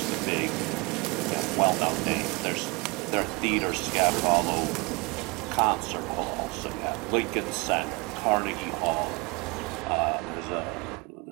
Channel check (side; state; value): left; quieter; 27.6 dB